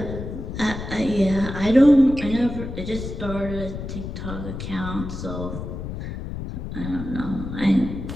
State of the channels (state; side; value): noise; left; rumble, 7 dB below the sound